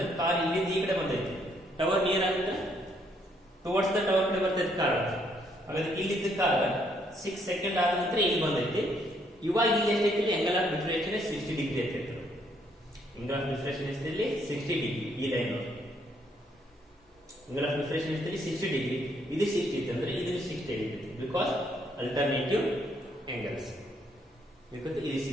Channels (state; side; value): normal; both; correlation 0.70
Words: ಕಾರ್ ಇಲ್ಲಿಂದ ಈ ಕಡೆ ಬಂದೈತಿ. ಟವರ್ ನಿಯರ್ ಆಗುತ್ತೆ ಟುವರ್ಡ್ಸ್ ದ ಟವರ್ ಕಡೆ ಬರ್ತೈತಿ ಕಾರ್. ಹಾಗಾದ್ರೆ ಇಲ್ಲಿದ್ದ ಕಾರ್ 6 seconds ಆದ ನಂತರ ಇಲ್ಲಿ ಬಂದೈತಿ. ಇವಾಗ ಇಲ್ಲಿ ಎಷ್ಟೈತಿ angle of diffraction 60 ಡಿಗ್ರಿ ಐತಿ. angle of diffraction ಎಷ್ಟಿದೆ 60 ಡಿಗ್ರಿ. ಈ ಲೈನ್ angle of diffraction ಎಷ್ಟಿದೆ 60 ಡಿಗ್ರಿ. ಇದು 60 ಐತಿ ಅಂದ್ರೆ ಇದು 60 ಐತಿ ಬಿಕಾಸ್ ಅಲ್ಟರ್ನೇಟಿವ್ angles. because ಇದು